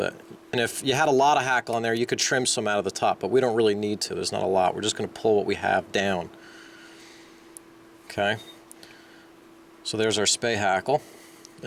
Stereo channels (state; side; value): identical; both; correlation 1.00